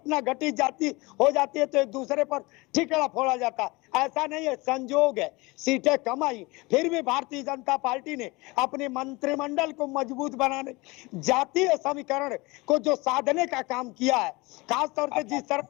घटी जाती हो जाती है तो एक दूसरे पर ठिकरा फोड़ा जाता है, ऐसा नहीं है, संयोग है। सीटें कम आई, फिर भी भारतीय जनता पार्टी ने अपने मंत्रिमंडल को मजबूत बनाने, जातीय समीकरण को जो साधने का काम किया है, खासतौर से जिस तरह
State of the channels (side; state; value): right; quieter; 23.9 dB